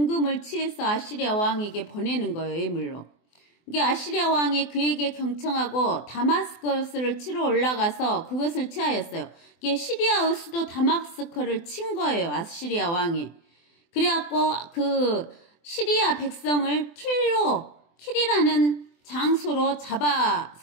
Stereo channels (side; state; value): right; late; 24 ms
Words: 취해서 아시리아 왕에게 보내는 거예요, 예물로. 이게 아시리아 왕이 그에게 경청하고 다마스커스를 치러 올라가서 그것을 취하였어요. 이게 시리아의 수도 다마스커를 친 거예요, 아시리아 왕이. 그래갖고 그 시리아 백성을 킬이라는 장소로